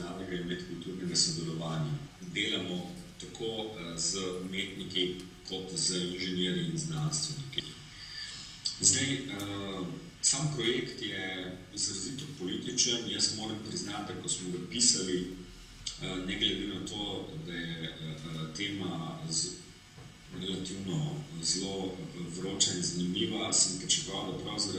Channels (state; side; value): identical; both; correlation 1.00